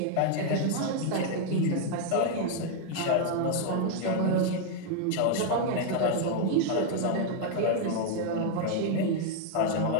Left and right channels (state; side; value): different; both; correlation 0.00